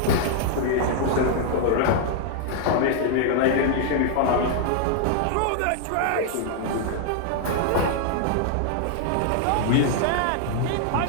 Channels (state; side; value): different; both; correlation 0.00